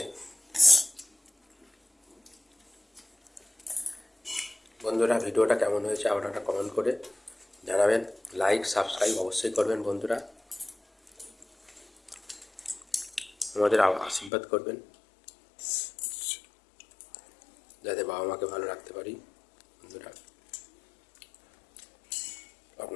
বন্ধুরা ভিডিওটা কেমন হয়েছে আপনারা কমেন্ট করে জানাবেন, লাইক সাবস্ক্রাইব অবশ্যই করবেন বন্ধুরা, আমাদের আশীর্বাদ করবেন যাতে বাবা মাকে ভালো রাখতে পারি। বন্ধুরা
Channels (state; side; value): drops out; right; at 14.3 s